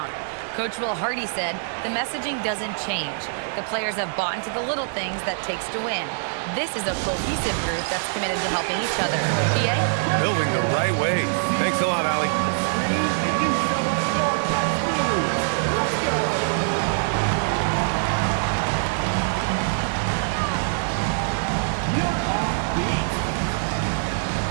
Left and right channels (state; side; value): silent; left; 61 dB below the other